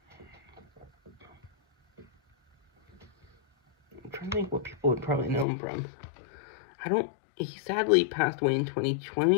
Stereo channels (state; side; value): drops out; right; at 5.5 s